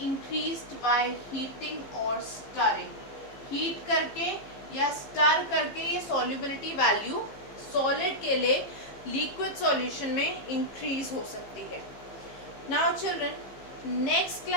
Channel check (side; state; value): right; late; 15 ms